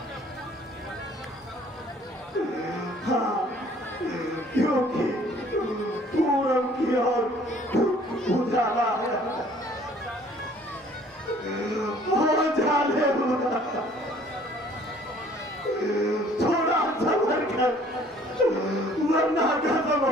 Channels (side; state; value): both; normal; correlation 0.56